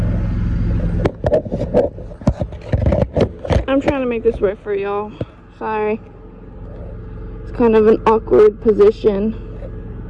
I'm trying to make this work for y'all. Sorry. It's kind of an awkward position.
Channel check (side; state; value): both; identical; correlation 1.00